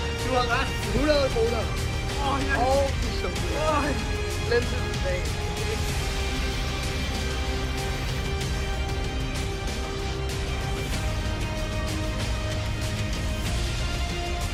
Du har ret. 100 kroner. Ja. Og chokolade. Glem det.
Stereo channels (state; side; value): identical; both; correlation 1.00